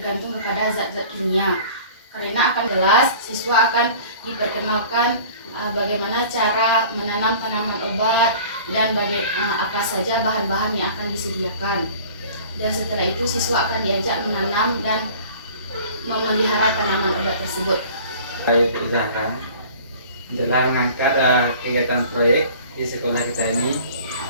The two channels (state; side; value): inverted; both; correlation -0.45